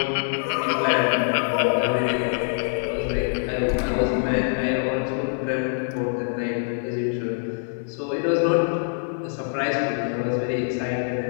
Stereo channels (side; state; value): right; silent; digital silence